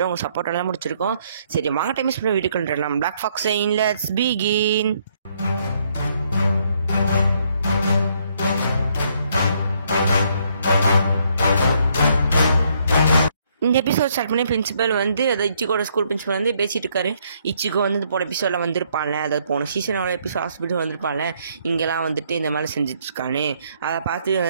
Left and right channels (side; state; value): both; inverted; correlation -0.70